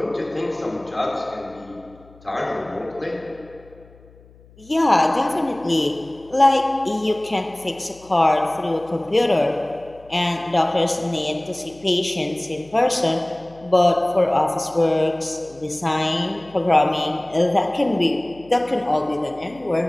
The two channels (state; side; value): noise; left; hum, 26 dB below the sound